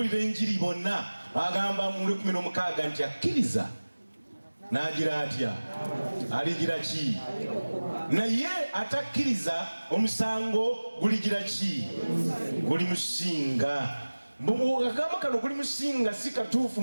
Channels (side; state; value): both; inverted; correlation -1.00